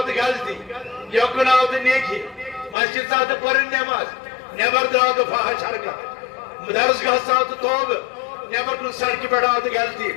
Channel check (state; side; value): drops out; right; at 2.8 s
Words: تہٕ غلطی یوکن آو تہٕ نیکی مسجد ژاو تہٕ پٔرٕن نٮ۪ماز نٮ۪بر درٛاو تہٕ فحش حرکت درسگاہ ژاو تہٕ توبہٕ نٮ۪بر کُن سڑکہِ پٮ۪ٹھ آو تہٕ غلطی